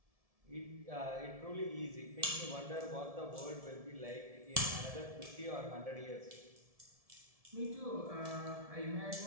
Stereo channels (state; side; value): late; left; 1.7 ms